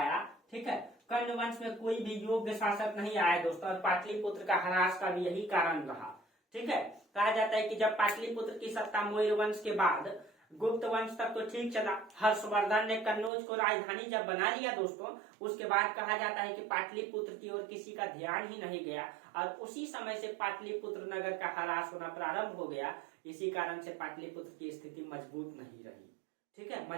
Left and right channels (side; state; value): left; drops out; at 13.3 s